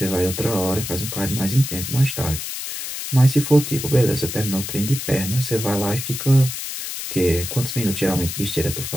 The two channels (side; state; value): left; noise; hiss, 6 dB below the sound